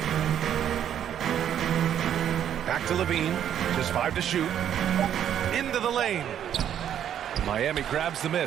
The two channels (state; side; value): quieter; left; 9.8 dB